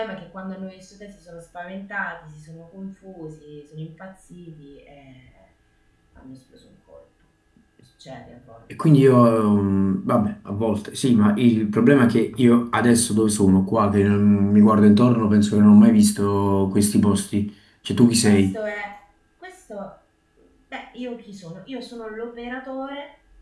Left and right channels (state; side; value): identical; both; correlation 1.00